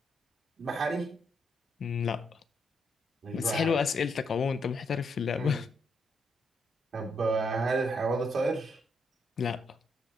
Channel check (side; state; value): both; normal; correlation 0.77